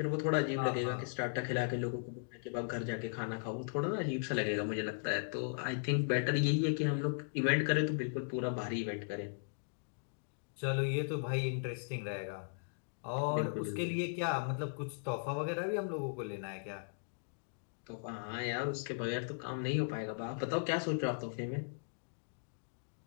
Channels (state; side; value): silent; right; digital silence